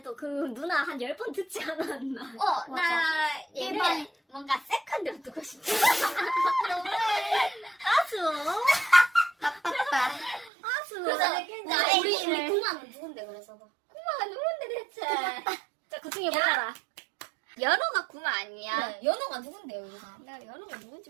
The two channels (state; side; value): drops out; left; at 10.5 s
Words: 그 누나 한 10번 듣지 않았나? 나 맞아. 얘를 일반- 뭔가 세컨드로 두고 싶어. 아수. 나빴다. 아수. 그래서 나 나 우리 애기를- 구마는 누군데 그래서. 구마가 누군데 대체? 자, 그 중에 골라라. 연호가 구마 아니야? 그래, 연호가 누군데요, 여기서? 내가 연호가 누군지